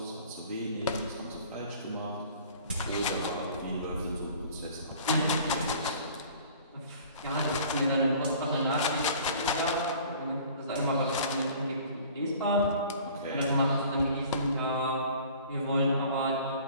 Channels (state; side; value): inverted; both; correlation -0.48